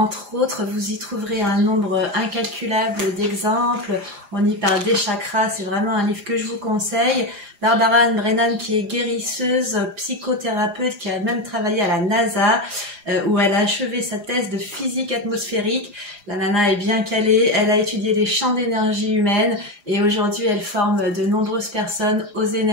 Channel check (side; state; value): left; late; 4.9 ms